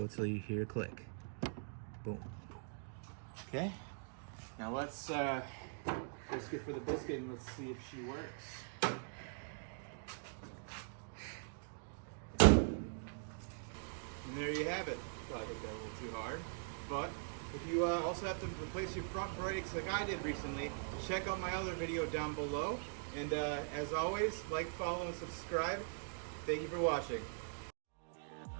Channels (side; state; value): left; silent; digital silence